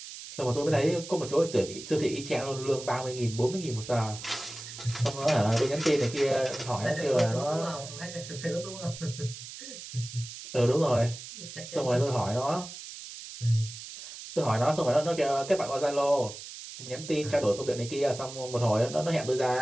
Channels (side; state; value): right; noise; hiss, 12 dB below the sound